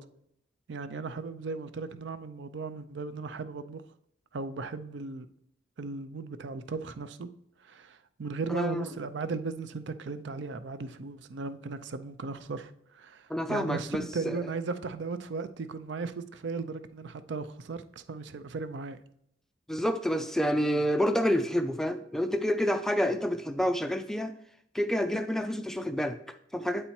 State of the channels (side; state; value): both; normal; correlation 0.73